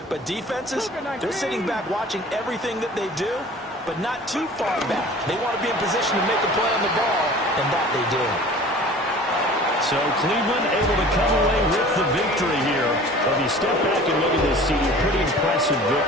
But defenses, they're sitting back watching everything that they do, but not too far back. They want to be in position to make a play on the ball, and that they did. So Cleveland able to come away with the victory here. Well, if you step back and look at this, CD, pretty impressive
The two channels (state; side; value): normal; both; correlation 0.44